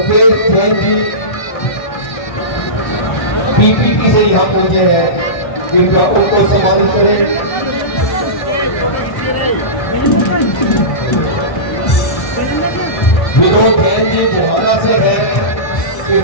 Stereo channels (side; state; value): right; late; 1.6 ms